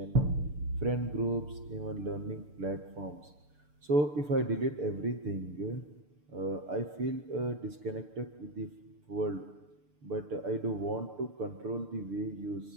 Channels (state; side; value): late; left; 6.8 ms